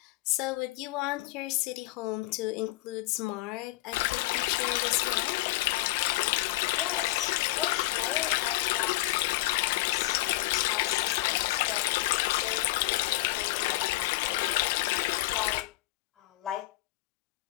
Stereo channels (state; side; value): quieter; right; 18.1 dB